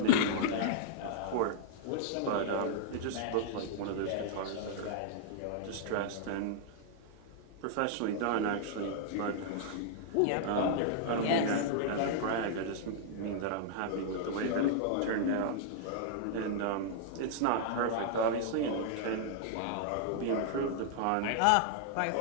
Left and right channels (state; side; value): different; both; correlation -0.01